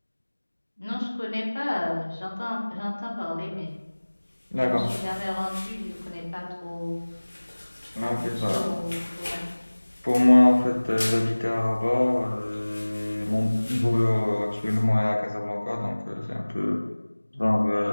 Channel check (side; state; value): both; inverted; correlation -1.00